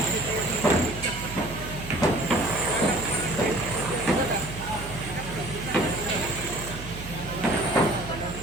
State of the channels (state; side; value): noise; right; hum, 11 dB below the sound